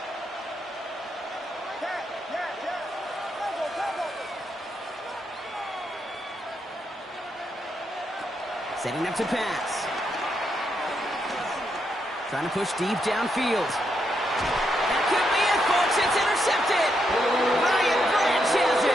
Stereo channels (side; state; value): both; normal; correlation 0.80